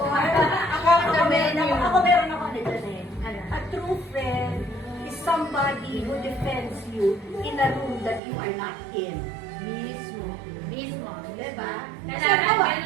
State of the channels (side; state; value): left; drops out; at 8.2 s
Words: ako meron ako nito eh. Ano? A true friend is somebody who defends you in a room that you are not in. Mismo. Mismo. Diba? Kasi Dapat ako,